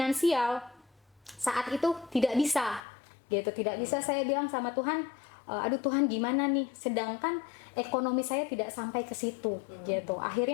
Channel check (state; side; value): drops out; right; at 2.8 s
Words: saat itu tidak bisa gitu. Tidak bisa. Saya bilang sama Tuhan, aduh Tuhan gimana nih? Sedangkan ekonomi saya tidak sampai ke situ gitu.